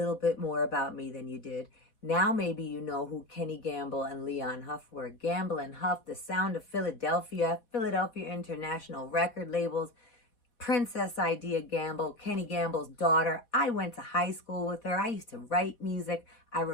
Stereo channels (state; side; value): late; right; 4.1 ms